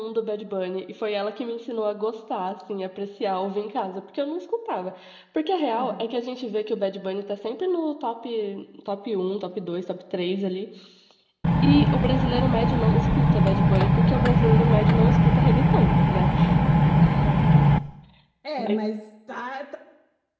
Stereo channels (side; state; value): both; identical; correlation 1.00